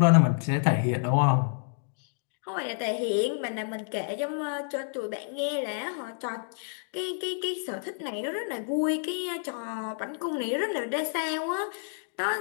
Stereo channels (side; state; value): right; silent; digital silence